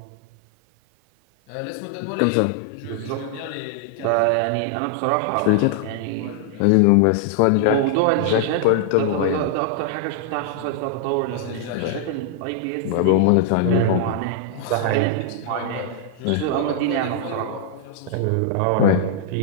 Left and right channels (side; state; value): both; different; correlation -0.01